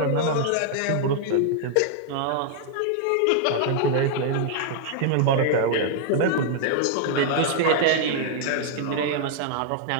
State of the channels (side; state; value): both; different; correlation 0.00